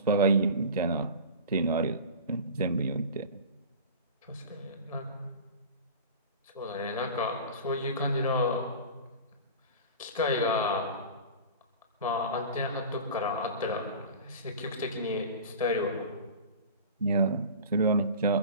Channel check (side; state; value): both; inverted; correlation -0.35